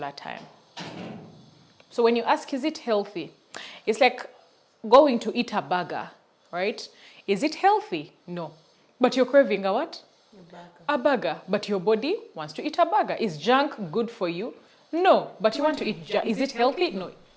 time. So when you ask, is it healthy? It's like going to eat a burger, right? Is it healthy? No. But you're craving a what? A burger. But your body wants to eat a burger. Is junk good for you? No. But you want to eat junk. Is it healthy? No.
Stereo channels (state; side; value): identical; both; correlation 1.00